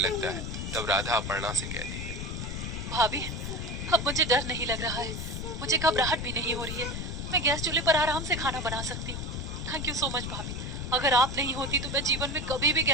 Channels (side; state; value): left; noise; rumble, 5 dB below the sound